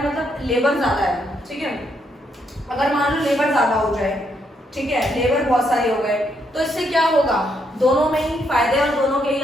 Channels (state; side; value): normal; both; correlation 0.76